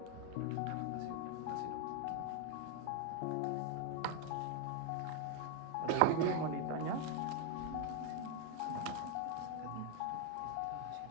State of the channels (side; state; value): both; different; correlation 0.01